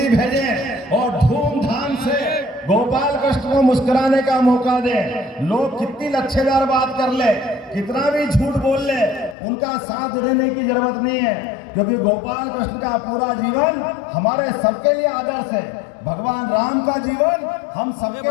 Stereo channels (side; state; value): right; drops out; at 9.3 s